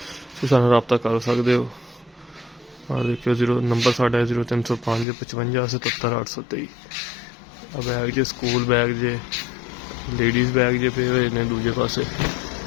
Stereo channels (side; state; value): right; drops out; at 5.1 s